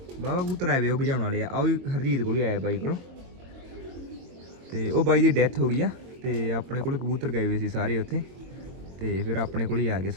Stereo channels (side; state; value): left; late; 22 ms